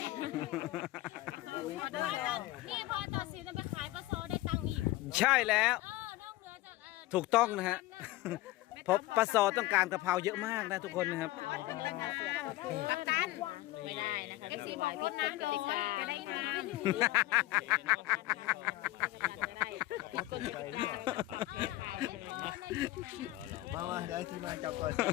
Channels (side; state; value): right; quieter; 17.6 dB